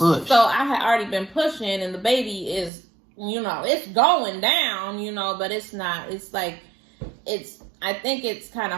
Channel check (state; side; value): drops out; left; at 2.7 s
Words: So I had already been pushing, and the baby is, it's going down, but it's not. It's like, I think it's kind